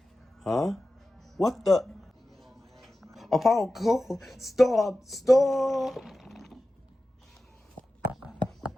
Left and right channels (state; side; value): normal; both; correlation 0.94